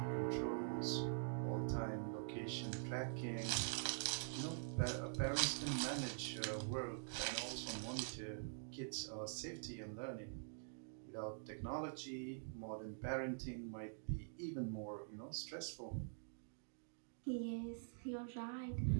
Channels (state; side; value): silent; left; digital silence